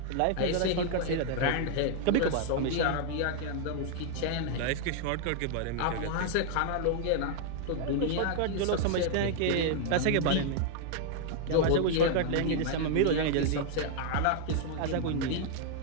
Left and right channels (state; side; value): different; both; correlation -0.01